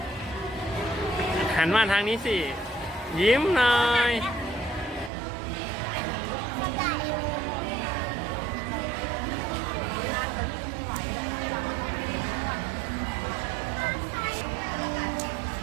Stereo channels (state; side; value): drops out; left; at 5.1 s